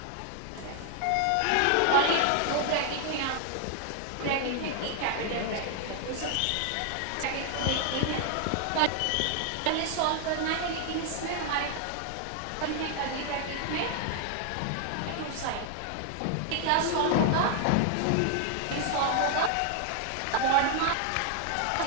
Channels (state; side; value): different; both; correlation 0.00